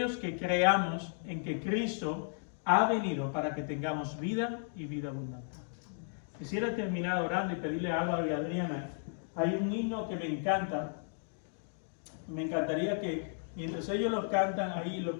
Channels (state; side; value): silent; right; digital silence